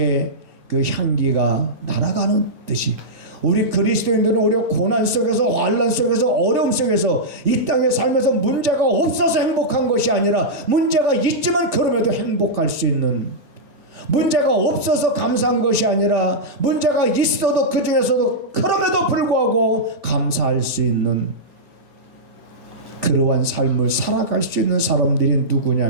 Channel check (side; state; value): left; late; 2.2 ms